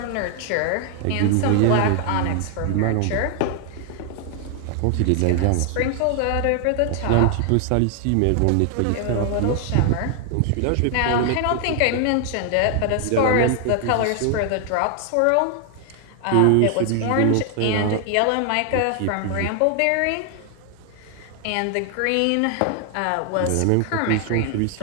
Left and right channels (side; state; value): both; different; correlation 0.00